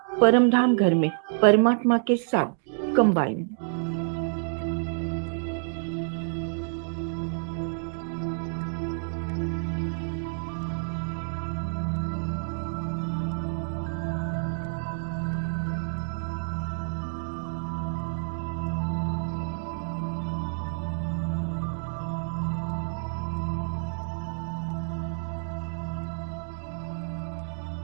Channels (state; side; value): silent; left; digital silence